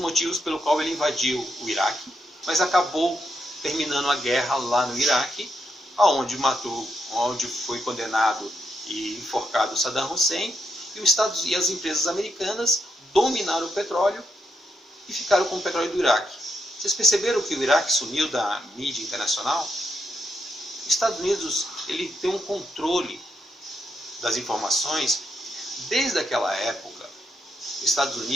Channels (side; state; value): both; normal; correlation 0.81